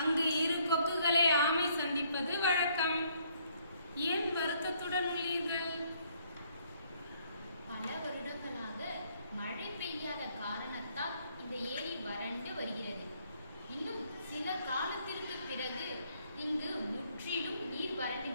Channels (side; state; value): both; inverted; correlation -0.67